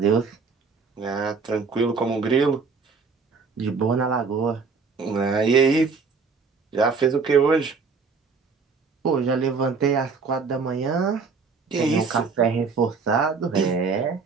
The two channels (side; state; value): left; quieter; 4.9 dB